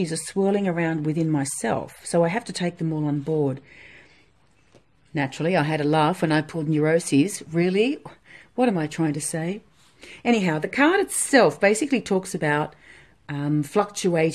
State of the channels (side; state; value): both; identical; correlation 1.00